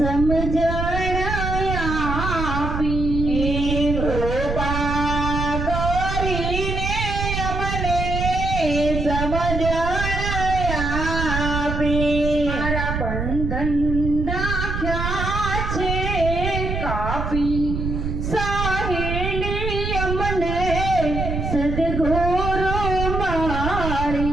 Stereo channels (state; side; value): noise; right; rumble, 3 dB below the sound